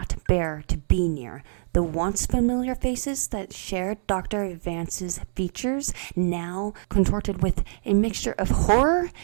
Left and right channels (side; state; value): left; silent; digital silence